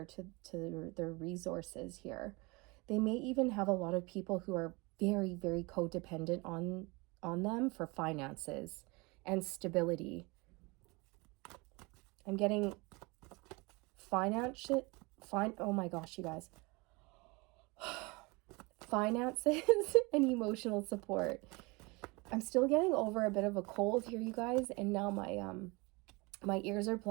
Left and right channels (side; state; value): left; quieter; 26.3 dB